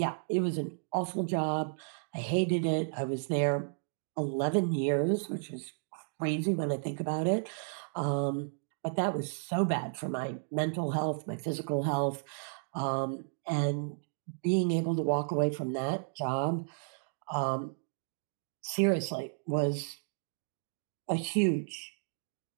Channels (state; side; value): silent; left; digital silence